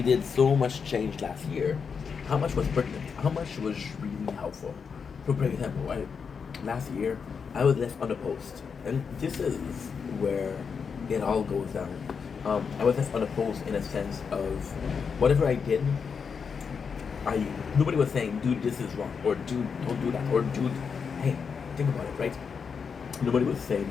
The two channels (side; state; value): right; quieter; 6.0 dB